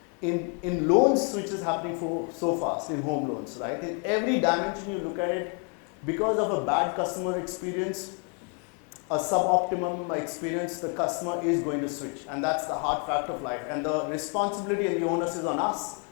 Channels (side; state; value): right; quieter; 38.5 dB